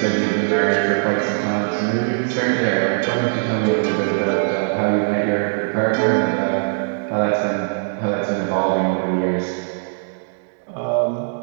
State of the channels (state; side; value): silent; left; digital silence